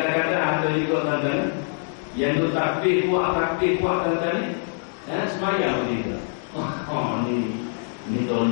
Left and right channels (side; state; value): right; silent; digital silence